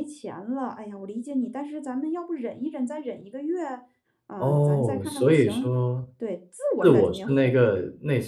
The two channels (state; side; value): identical; both; correlation 1.00